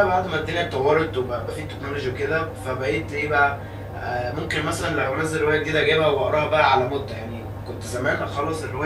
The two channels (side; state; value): both; identical; correlation 1.00